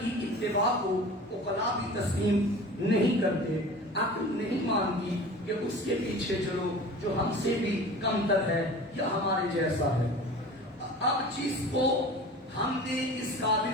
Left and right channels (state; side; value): normal; both; correlation 0.39